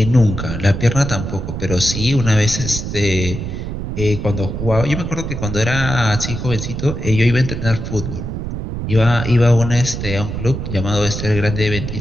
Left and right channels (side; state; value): right; noise; rumble, 5 dB below the sound